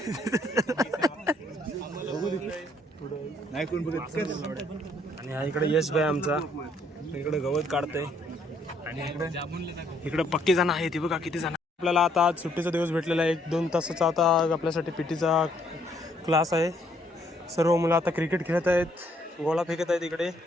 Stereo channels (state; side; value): normal; both; correlation 0.68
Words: आणि हा इकडे यश भाई आमचा, इकडे गवत काढतंय आणि इकडे पक्के जण आहेत। बघा किती जण। आपल्याला आता आज सुट्टीचा दिवस भेटलेला आहे। 1-2 तासाचा आता आपल्यासाठी पीटीचा क्लास आहे। सर्व मुलं आता क्रिकेट खेळत आहेत, गोळा फेकत आहेत इकडे,